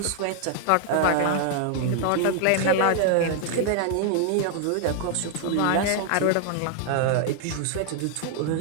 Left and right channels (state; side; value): different; both; correlation -0.01